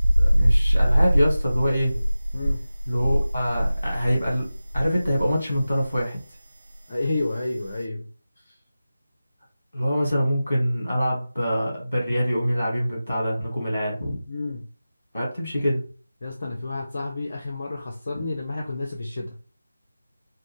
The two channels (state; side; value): inverted; both; correlation -0.95